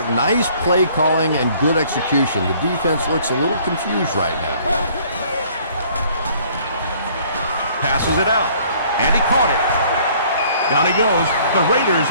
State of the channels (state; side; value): inverted; both; correlation -0.58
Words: Nice play calling and good execution. The defense looks a little confused right now. Passes it out, and he caught it. Down he goes. The Raiders